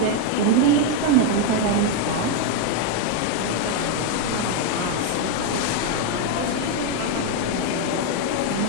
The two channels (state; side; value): different; both; correlation 0.01